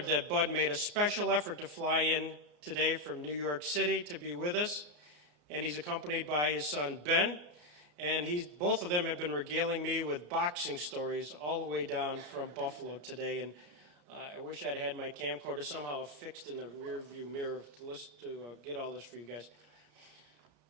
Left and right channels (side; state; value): left; late; 34 ms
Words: that Bud made a special effort to fly in today from New York City to be with us, and he's accompanied by his son Ben, and both of them have been regaling me with boxing stories all the way down from Buffalo today, and I wish I'd had my camcorder somehow fixed in the rear view mirror to get all this for you guys.